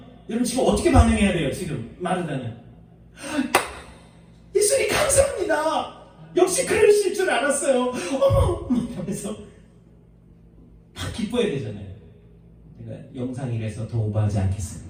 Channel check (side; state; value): both; identical; correlation 1.00